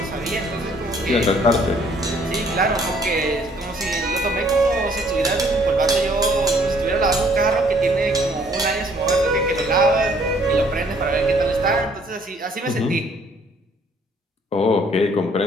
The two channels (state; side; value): normal; both; correlation 0.62